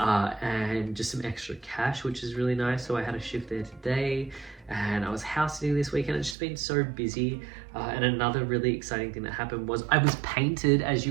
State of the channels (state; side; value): drops out; left; at 6.4 s